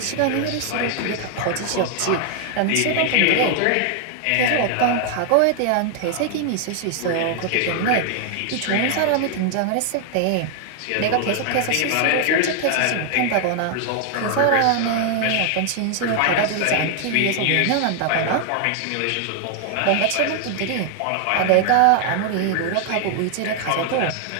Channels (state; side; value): different; both; correlation 0.00